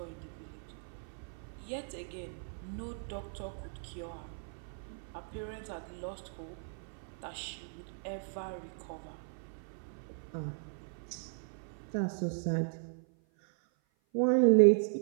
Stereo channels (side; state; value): left; silent; 53 dB below the other